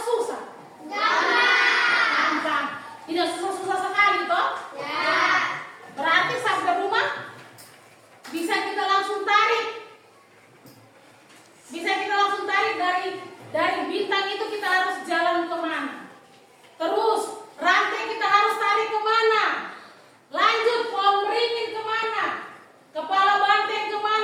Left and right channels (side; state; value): both; identical; correlation 1.00